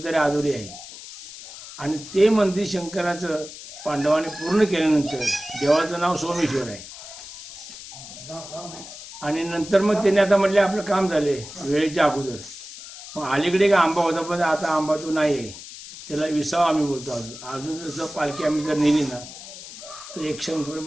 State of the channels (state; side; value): noise; left; hiss, 14 dB below the sound